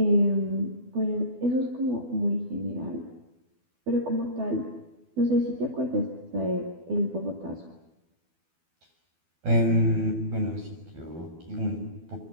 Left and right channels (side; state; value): left; late; 12 ms